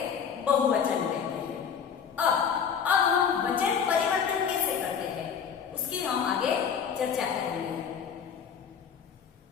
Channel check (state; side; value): quieter; right; 7.2 dB